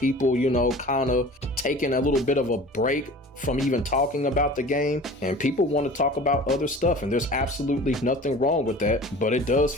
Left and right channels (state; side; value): normal; both; correlation 0.41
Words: kind of taking a little bit of a break from even talking about the game. And people want to talk about other stuff. And there's absolutely nothing wrong with that. But it does